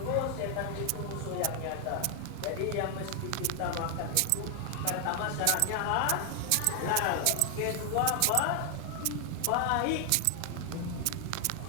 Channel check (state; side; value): different; both; correlation 0.00